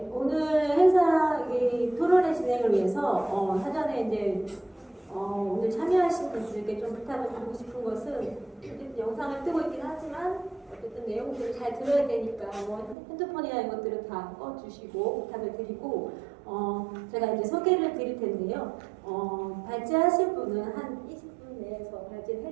오늘 행사 토론회 진행을 위해서 사전에 이제 오늘 참여하신 분들께 좀 부탁을 드리고 싶은 것은 영상을 뜨고 있긴 하지만 어쨌든 내용들을 잘 들어야 되니까 핸드폰이나 이런 것들은 다 꺼주시고 부탁을 드리고 제가 이제 소개를 드릴 텐데요. 발제하실 분은 한 20분 내에서 발제를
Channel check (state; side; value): drops out; left; at 13.0 s